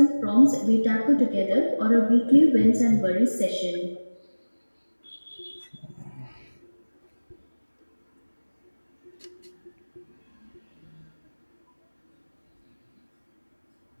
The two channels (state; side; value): inverted; both; correlation -1.00